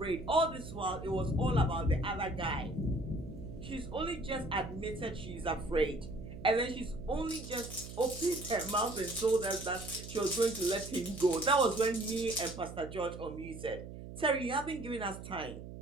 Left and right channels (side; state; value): right; noise; hum, 11 dB below the sound